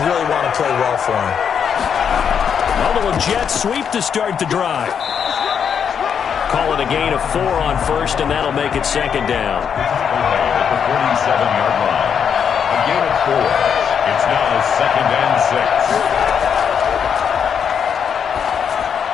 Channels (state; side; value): quieter; right; 7.5 dB